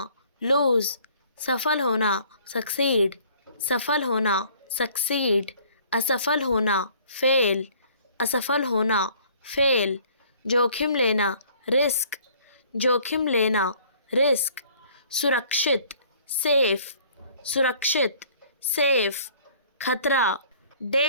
लूज, सफल होना, सक्सीड, सफल होना, सक्सीड, असफल होना, फेल, असफल होना, फेल, जोखिम लेना, रिस्क, जोखिम लेना, रिस्क, सुरक्षित, सेफ, सुरक्षित, सेफ, खतरा,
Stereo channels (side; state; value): both; inverted; correlation -0.56